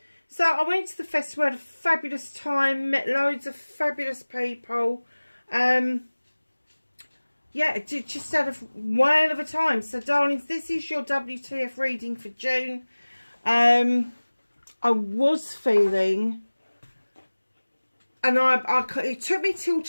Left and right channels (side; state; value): both; inverted; correlation -1.00